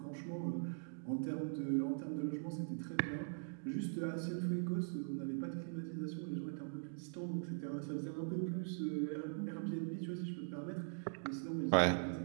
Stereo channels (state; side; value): silent; left; digital silence